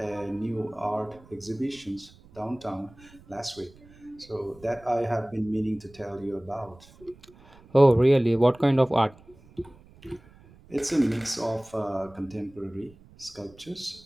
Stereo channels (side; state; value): right; noise; rumble, 25 dB below the sound